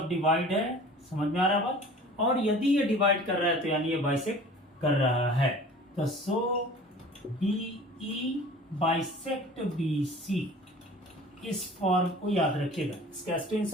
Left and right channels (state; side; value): normal; both; correlation 0.44